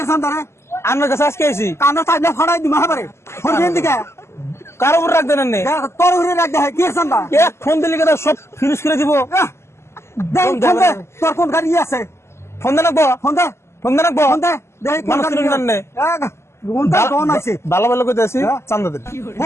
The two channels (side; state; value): right; late; 0.13 ms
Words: চান্দা রে? আমার কাছে আজকে আইছি। কানো তাই না ফাড়াই দিমা হাবারে হরবেন দিকে কার উপর রাখ দেন নে? তোর উড়ে রাখ দে কে চান্দা? এক ফোন দিলে কেন সব ফিনিশ করে দিব? দেখ ফোন দে তোর কোন গাড়ি আছে? ফোন দেন রাখবো? ফোন দে ফোন দেন রাখবো? ফোন দে দেখ কোন মানুষ গাড়ি চিনেন জানেন নে? কোনটা কোন আছে? ভালো ভালো করে আছি, চান্দা দেন।